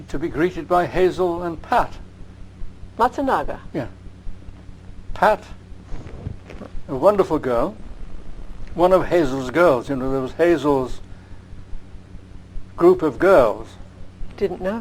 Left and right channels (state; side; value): identical; both; correlation 1.00